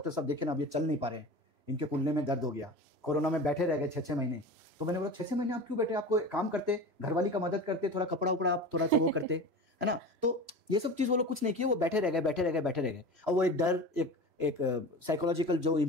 साहब देखिए ना अब ये चल नहीं पा रहे हैं, इनके कुल्ले में दर्द हो गया, कोरोना में बैठे रह गए 6-6 महीने. तो मैंने बोला 6-6 महीने आप क्यों बैठे, आपको काम करते, घरवाली का मदद करते, थोड़ा कपड़ा उपड़ा आप थोड़ा सा वो करते, है ना. तो ये सब चीज वो लोग कुछ नहीं किए, वो बैठे रह गए. और वो एक डर, एक साइकोलॉजिकल जो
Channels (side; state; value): left; late; 3.0 ms